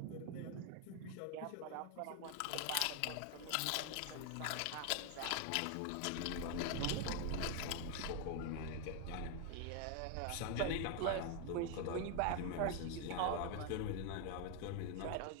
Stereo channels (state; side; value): different; both; correlation 0.01